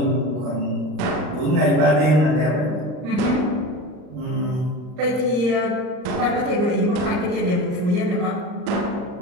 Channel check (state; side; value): late; left; 39 ms